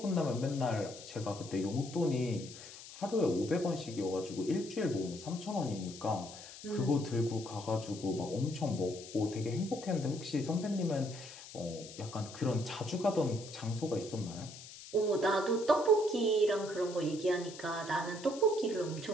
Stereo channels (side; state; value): left; noise; hiss, 15 dB below the sound